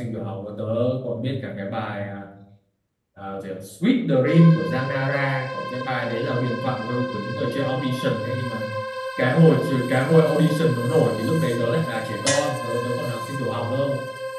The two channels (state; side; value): identical; both; correlation 1.00